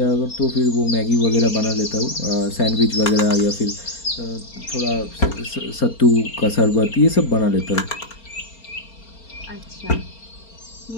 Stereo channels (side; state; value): right; late; 4.3 ms